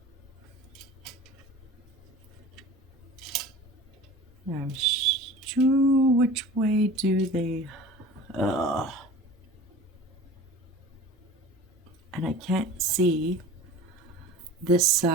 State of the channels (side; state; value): both; normal; correlation 0.39